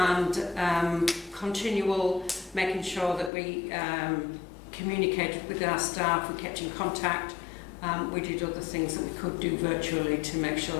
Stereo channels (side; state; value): right; drops out; at 3.3 s